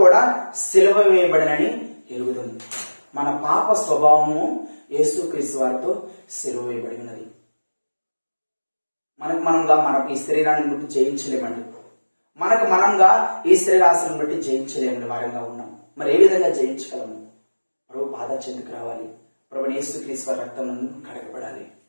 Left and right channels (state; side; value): inverted; both; correlation -1.00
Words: కూడా సిలువ వేయబడినని ఎరుగుతుంది. మన పాప స్వభావము యేసుక్రీస్తు వారితో సిలువ వేయబడి ఉన్నది. మనకు ఈ శరీరాన్ని బట్టి జయించలేమండి. మనంగా ఈ శరీరాశను బట్టి జయించలేమని వారంగా ఉన్నాం. మరి ఏ విధంగా జయించగలము? ప్రభు బాధ చెందుకు రావాలి, ప్రభు యేసుక్రీస్తు వారి రక్తం కడగబడాలి.